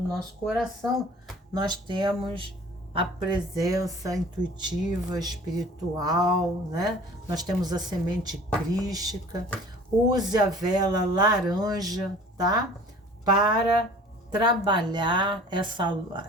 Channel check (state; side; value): normal; both; correlation 0.47